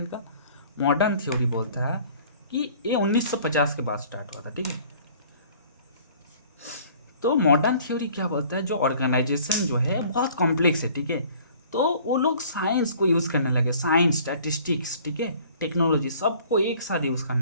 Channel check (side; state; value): both; inverted; correlation -0.52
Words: का? मॉडर्न थ्योरी बोलता है कि ये 1950 के बाद स्टार्ट हुआ था, ठीक है। तो मॉडर्न थ्योरी क्या बोलता है, जो ऑर्गेनाइजेशन जो है बहुत कॉम्प्लेक्स है, ठीक है। तो वो लोग साइंस को यूज़ करने लगे, साइंस, स्टैटिस्टिक्स, ठीक है, टेक्नोलॉजी, सबको एक साथ यूज़